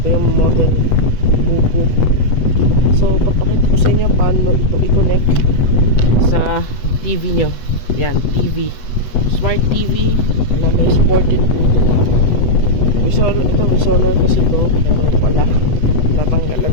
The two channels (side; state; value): right; late; 8.1 ms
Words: Ito yung model Buku. So papakita ko sa inyo paano ito i-connect sa TV nyo. Yan, TV, smart TV na may supported Bluetooth. May solar kasi ito, pero wala, natanggal ang